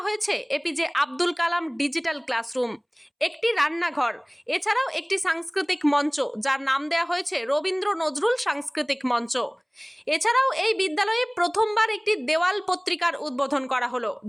হয়েছে APJ Abdul Kalam digital classroom, একটি রান্নাঘর, এছাড়াও একটি সাংস্কৃতিক মঞ্চ যার নাম দেওয়া হয়েছে রবীন্দ্র নজরুল সাংস্কৃতিক মঞ্চ। এছাড়াও এই বিদ্যালয়ে প্রথমবার একটি দেওয়াল পত্রিকার উদ্বোধন করা হলো,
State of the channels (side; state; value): both; identical; correlation 1.00